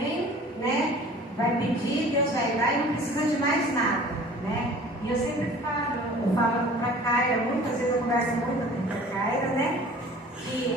né? Vai pedir, Deus vai dar e não precisa de mais nada, né? E eu sempre falo para a Caira, muitas vezes eu converso muito com a Caira, né?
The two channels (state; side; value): normal; both; correlation 0.46